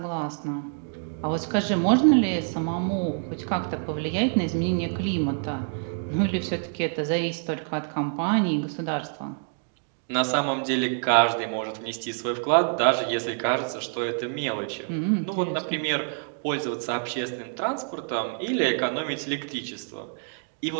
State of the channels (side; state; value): left; silent; 60 dB below the other